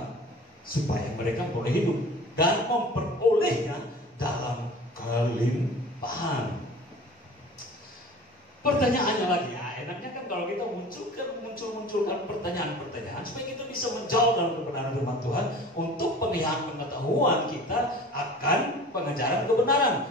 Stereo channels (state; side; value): normal; both; correlation 0.41